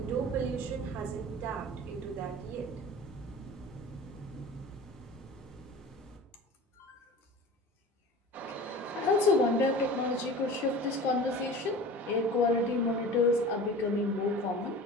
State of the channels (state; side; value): normal; both; correlation 0.38